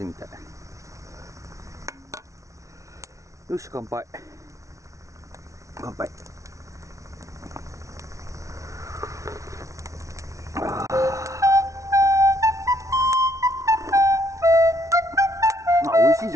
みたい。よし乾杯。乾杯。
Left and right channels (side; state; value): left; late; 0.15 ms